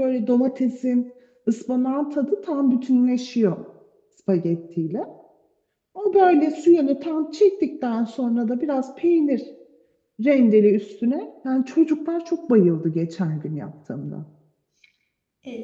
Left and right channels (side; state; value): both; identical; correlation 1.00